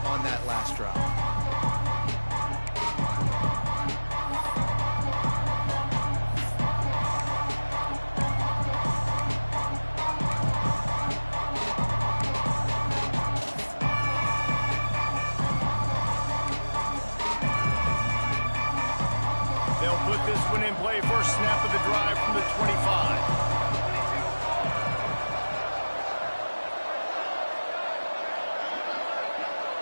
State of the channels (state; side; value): inverted; both; correlation -1.00